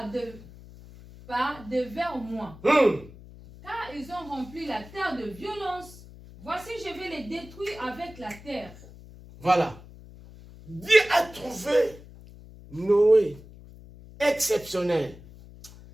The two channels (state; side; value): noise; left; hum, 19 dB below the sound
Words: devers moi. Car ils ont rempli la terre de violence. Voici, je vais les détruire avec la terre. Voilà. Dieu a trouvé Noé exceptionnel.